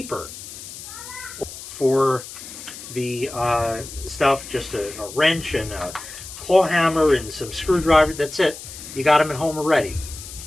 For the stuff, just a wrench and a claw hammer and some screwdriver, that's it. You got them at home already.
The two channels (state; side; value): noise; left; hiss, 13 dB below the sound